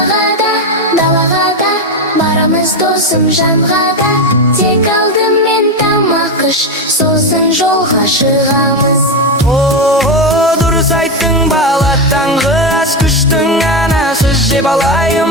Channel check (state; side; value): normal; both; correlation 0.12